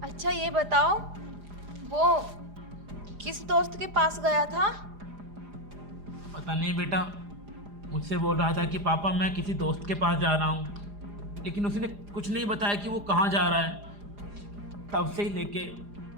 अच्छा ये बताओ, वो किस दोस्त के पास गया था? पता नहीं बेटा, मुझसे बोल रहा था कि पापा मैं किसी दोस्त के पास जा रहा हूँ, लेकिन उसने कुछ नहीं बताया कि वो कहाँ जा रहा है। तब से ही लेके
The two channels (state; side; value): late; left; 4.9 ms